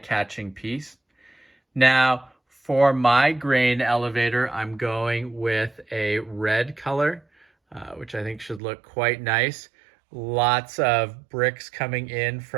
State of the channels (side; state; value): left; drops out; at 8.6 s